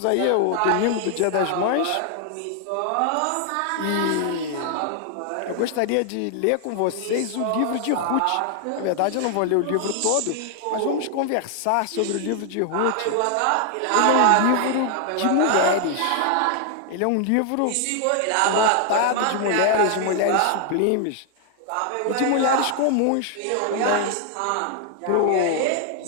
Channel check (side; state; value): both; different; correlation 0.00